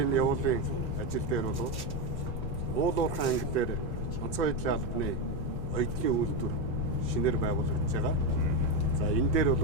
явуулын ажил дээр бол уулуурхан анги дээр онцгой байдлын албаны оюутны үйлдвэр шинээр байгуулагдж байгаа. За энэ дээр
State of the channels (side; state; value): both; normal; correlation 0.09